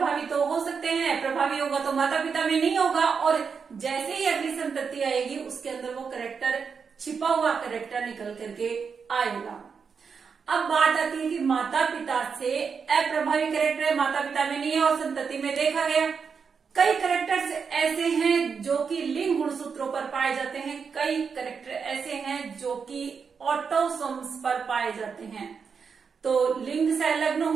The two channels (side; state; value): left; quieter; 5.9 dB